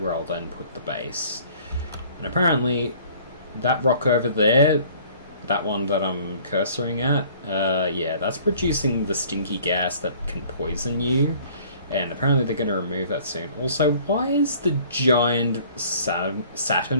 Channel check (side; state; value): both; inverted; correlation -0.53